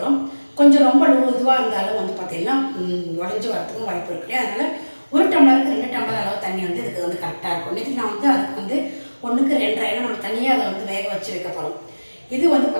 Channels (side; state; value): both; inverted; correlation -1.00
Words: கொஞ்சம் ரொம்ப இதுவாக இருந்தாலும் வந்து பார்த்திங்கன்னா உடஞ்சி வரத்துக்கும் வாய்ப்பு இருக்குது. அதனால் 1 டம்ளருக்கு 2 டம்ளர் அளவு தண்ணி வந்து இதுக்கு வந்து கரெக்டாக இருக்கும். நேற்று நான் வந்து அதுக்கு வந்து 1க்கு 2.5 ஏன்னா நம்ம தனியாக அதை வந்து வேக வச்சு வைக்க போகிறோம். இது வந்து